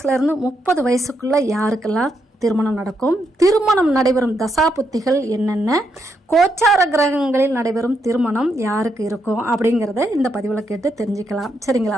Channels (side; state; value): both; normal; correlation 0.79